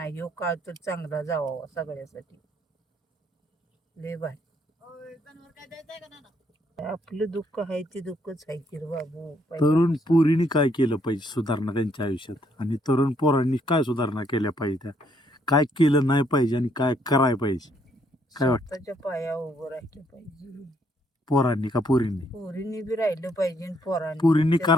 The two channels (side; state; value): both; normal; correlation 0.70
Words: ह्यो काळ तर चांगला जावा सगळ्यासाठी, लय भारी. आपलं दुःख आहे ते दुःखच आहे की रे बाबू. तरुण पोरीने काय केलं पाहिजे सुधारणा त्यांच्या आयुष्यात, आणि तरुण पोरांनी काय सुधारणा केल्या पाहिजे, त्या काय केलं नाही पाहिजे आणि काय करायला पाहिजे? काय वाटतं? स्वतःच्या पायावर उभं राहिलं पाहिजे. पोरांनी का पोरींनी? पोरींनी बी राहिलं पाहिजे आणि पोरांनी पोरींनी